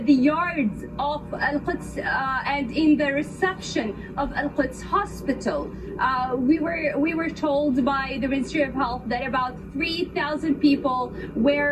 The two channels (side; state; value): both; identical; correlation 1.00